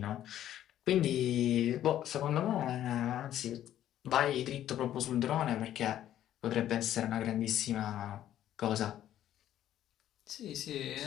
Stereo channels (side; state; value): right; quieter; 11.9 dB